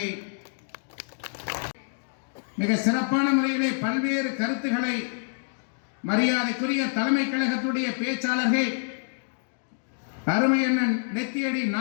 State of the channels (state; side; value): silent; right; digital silence